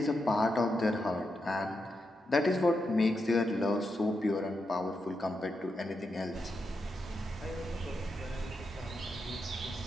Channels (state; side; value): normal; both; correlation 0.85